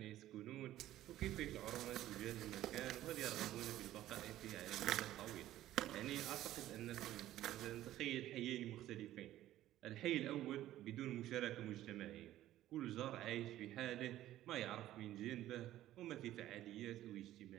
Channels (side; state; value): left; quieter; 13.9 dB